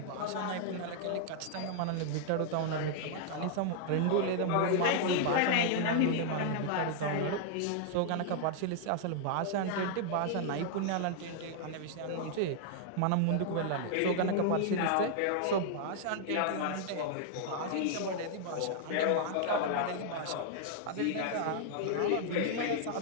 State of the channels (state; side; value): different; both; correlation -0.01